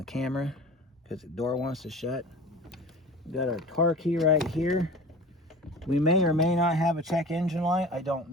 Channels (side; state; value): both; normal; correlation 0.38